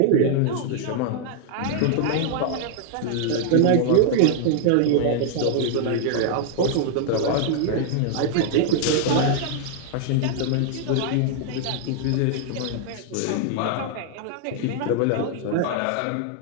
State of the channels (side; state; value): both; different; correlation 0.00